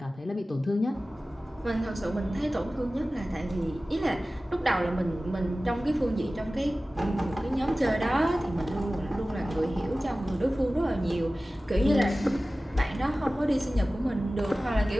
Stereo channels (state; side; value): normal; both; correlation 0.97